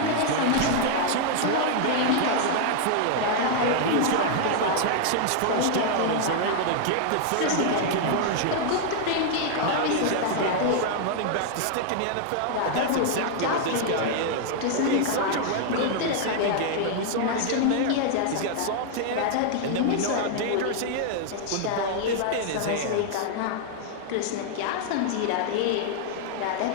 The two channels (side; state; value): both; different; correlation -0.01